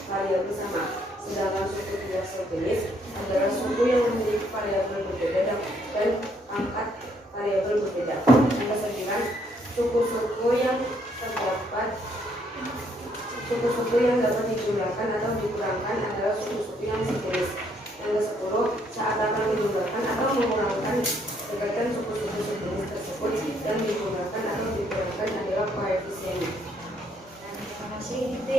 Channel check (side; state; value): both; normal; correlation 0.69